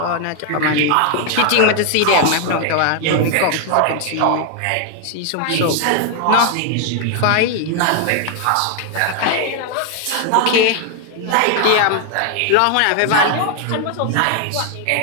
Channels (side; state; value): both; different; correlation 0.00